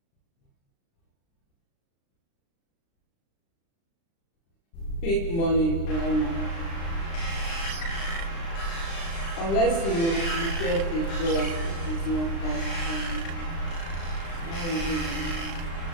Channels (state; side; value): late; right; 36 ms